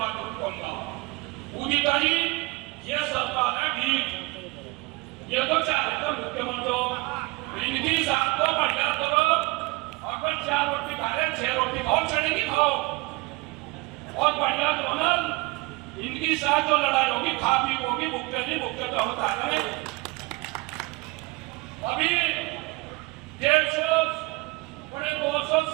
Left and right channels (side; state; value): left; quieter; 24.7 dB